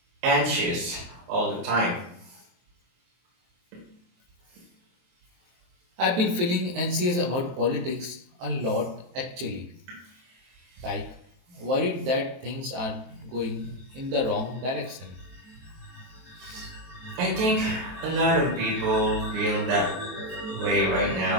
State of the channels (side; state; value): left; late; 23 ms